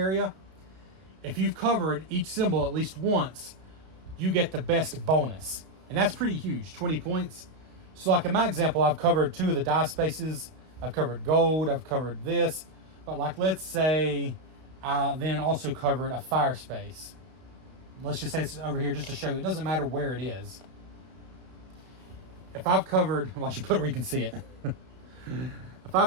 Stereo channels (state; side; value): late; left; 32 ms